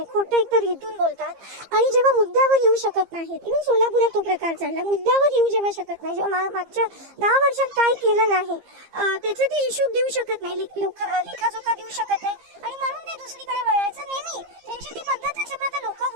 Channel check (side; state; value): left; late; 15 ms